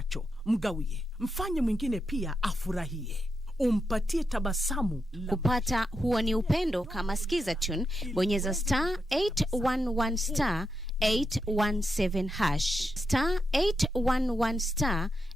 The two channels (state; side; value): normal; both; correlation 0.85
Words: mgawie. Mfanye mwingine pia afurahie. Umpatie tabasamu. Kupata huo ni upendo, kama sikiza tune, bonyeza *811 *817#. *811